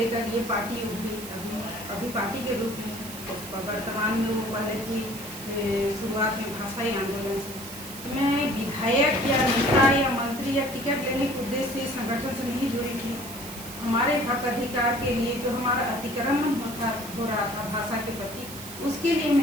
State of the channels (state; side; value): noise; right; hiss, 12 dB below the sound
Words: ये पार्टी उठी अभी पार्टी के रूप में वर्तमान में वो पहले थी शुरुआत में भाषाई आंदोलन से। मैं विधायक या नेता या मंत्री या टिकट लेने के उद्देश्य से संगठन से नहीं जुड़ी थी। हमारे हक अधिकार के लिए जो हमारा अतिक्रमण हो रहा था भाषा के प्रति, उसके लिए